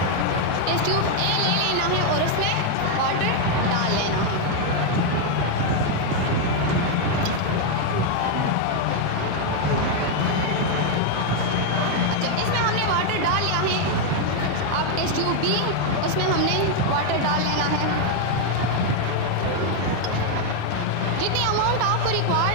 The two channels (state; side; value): different; both; correlation 0.01